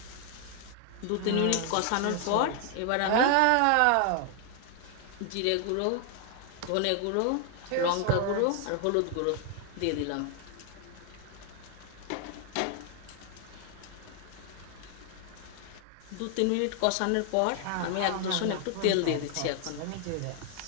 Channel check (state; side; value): different; both; correlation 0.00